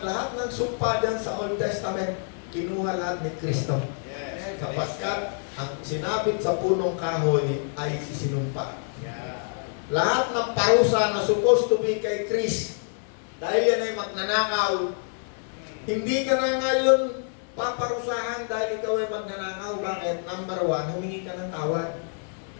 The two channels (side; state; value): right; silent; 58 dB below the other